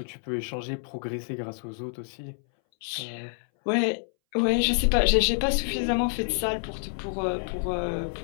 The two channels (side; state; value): right; silent; 60 dB below the other